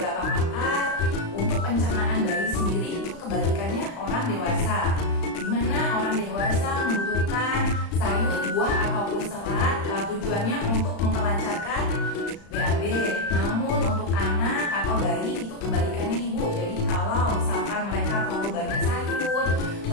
pakar, untuk pencernaan bayi sendiri itu kebalikannya orang dewasa, dimana orang dewasa membutuhkan sayur, buah ataupun serat tujuannya untuk memperlancarkan BAB. Namun untuk anak atau bayi itu kebalikannya ibu. Jadi kalau misalkan mereka terlalu banyak sayur,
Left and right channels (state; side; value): late; right; 35 ms